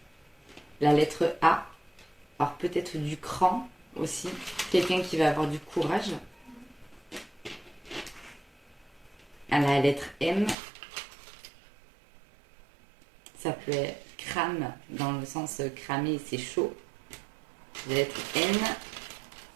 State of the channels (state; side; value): drops out; left; at 10.6 s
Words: La lettre A. Alors peut-être du cran aussi. Quelqu'un qui va avoir du courage. À la lettre M. Ça peut être crame, dans le sens cramer, c'est chaud. La lettre N.